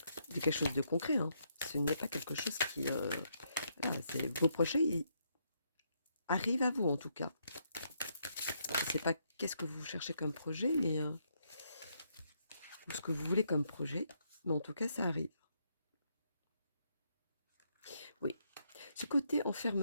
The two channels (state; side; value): inverted; both; correlation -0.75